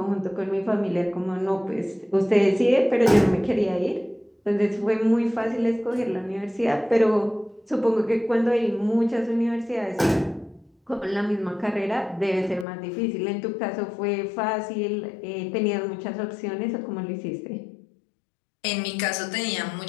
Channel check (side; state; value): right; drops out; at 12.7 s